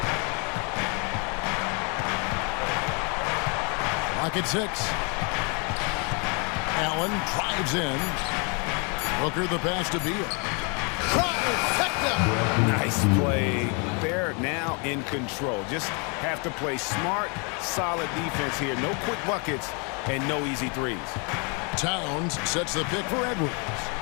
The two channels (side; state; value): right; quieter; 34.6 dB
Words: Clock at 6. Allen drives in. Booker the pass to Beal. Nice play. They're now in control. Just have to play smart, solid defense here. No quick buckets and no easy threes. Towns sets the pick for Edwards.